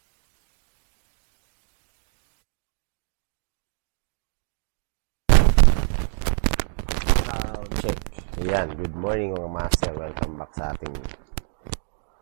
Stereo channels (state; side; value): silent; left; digital silence